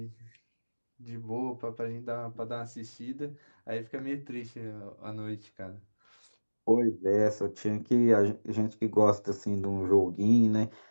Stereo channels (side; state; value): both; inverted; correlation -1.00